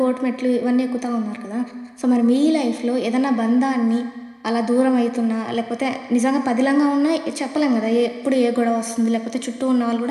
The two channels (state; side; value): identical; both; correlation 1.00